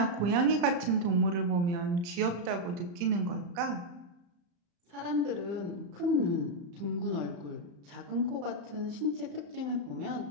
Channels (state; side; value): late; left; 35 ms